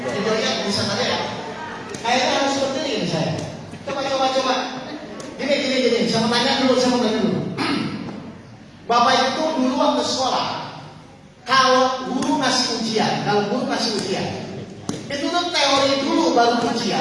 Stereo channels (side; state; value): both; identical; correlation 1.00